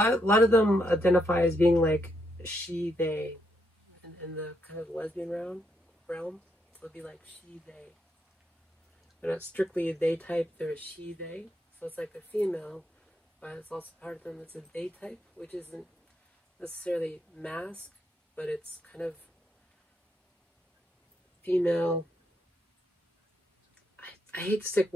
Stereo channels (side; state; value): both; normal; correlation 0.78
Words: of them identify as being like she, they, in the kind of lesbian realm. It'll be like she, they. They're not strictly a they type, they're a she, they. So it's like a female, but it's also part of them that's a they type, which isn't necessarily masc, but it's kind of female. I hate to stick